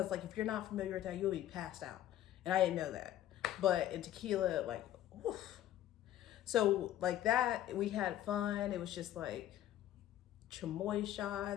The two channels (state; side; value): quieter; right; 12.6 dB